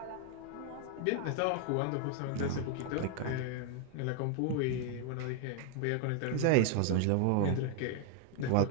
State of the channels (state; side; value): different; both; correlation 0.01